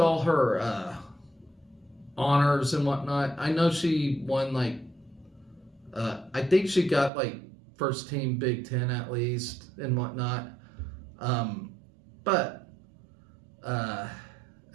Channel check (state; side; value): drops out; left; at 7.1 s